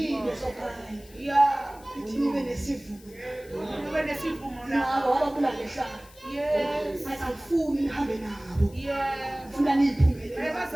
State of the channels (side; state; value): left; noise; hiss, 24 dB below the sound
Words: sokhaya ithi nibe nesivumo Ube nesivumo na. nabo wabakula ngehlala Yes. asifuni nihambe nabo Yes. ufuna niyiphumelele